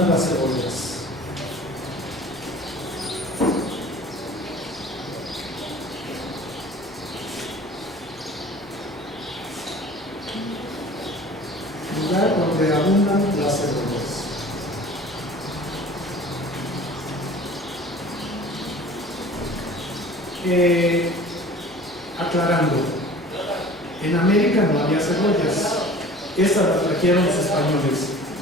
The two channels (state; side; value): noise; left; hum, 26 dB below the sound